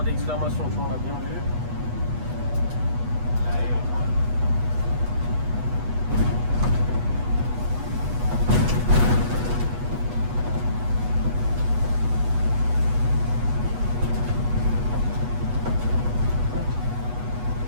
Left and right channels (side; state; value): left; late; 8.2 ms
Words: d'exclamation, tu vois, on l'a bien vu.